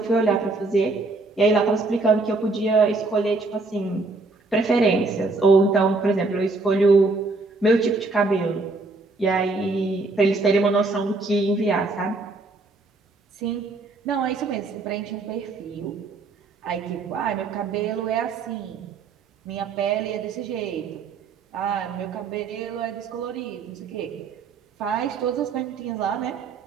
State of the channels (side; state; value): left; quieter; 3.6 dB